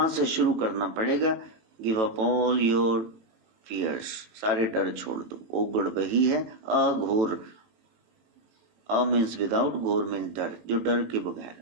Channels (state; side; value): late; left; 18 ms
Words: से शुरू करना पड़ेगा। Give up all your fears, सारे डर छोड़ दो। ओगड़ वही है अघोर, अ मीन्स विदाउट, घोर मीन्स डर, जो डर के